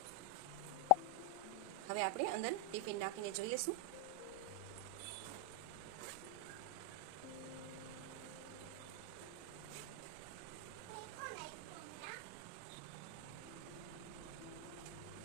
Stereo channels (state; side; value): different; both; correlation 0.00